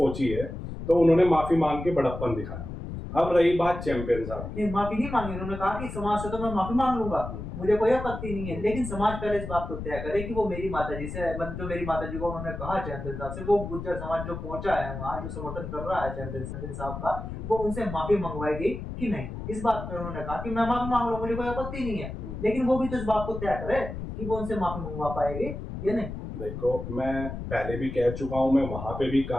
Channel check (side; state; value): left; noise; rumble, 8 dB below the sound